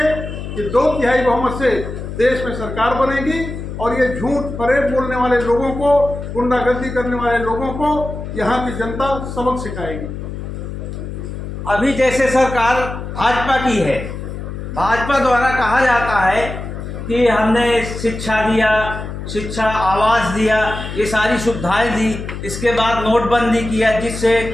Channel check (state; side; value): noise; left; hum, 8 dB below the sound